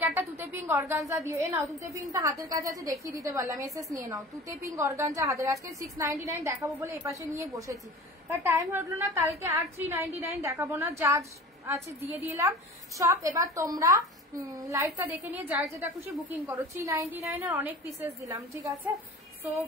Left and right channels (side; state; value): both; normal; correlation 0.39